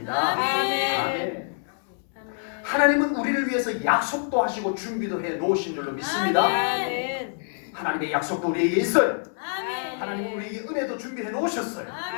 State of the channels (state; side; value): silent; right; 60 dB below the other